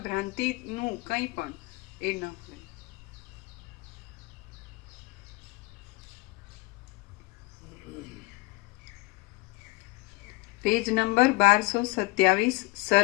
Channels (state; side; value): quieter; right; 23.9 dB